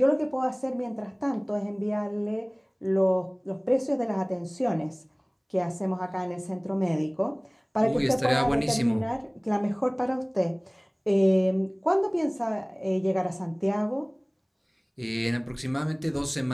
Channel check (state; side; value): identical; both; correlation 1.00